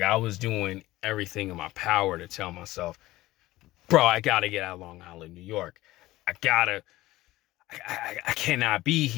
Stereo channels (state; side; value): quieter; right; 17.3 dB